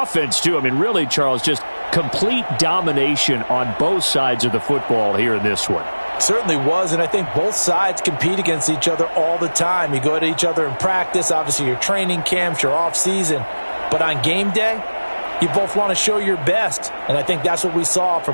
too. I mean, really, Charles, just complete domination on both sides of the football here in this one. Certainly was, and I think both sides compete against each other all the time. You go at each other in practice, obviously your training camps, your off-season. But on game day, you both want to show your best. And I think that's what we saw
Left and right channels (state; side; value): inverted; both; correlation -1.00